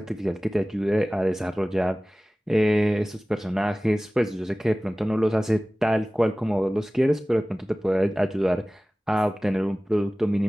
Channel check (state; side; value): normal; both; correlation 0.98